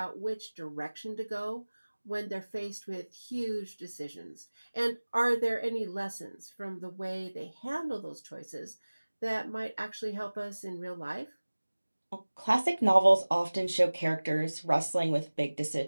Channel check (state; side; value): inverted; both; correlation -1.00